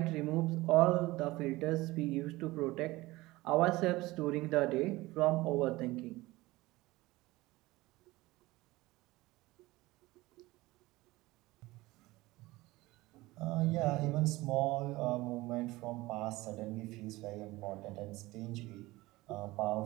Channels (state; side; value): quieter; left; 19.8 dB